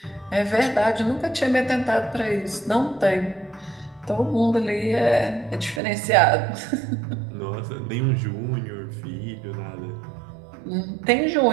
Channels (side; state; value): left; drops out; at 5.8 s